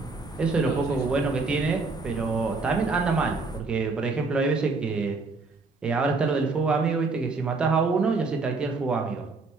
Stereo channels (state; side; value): quieter; left; 3.9 dB